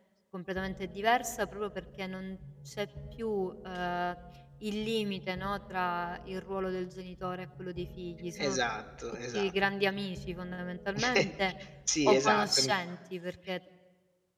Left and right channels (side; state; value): both; identical; correlation 1.00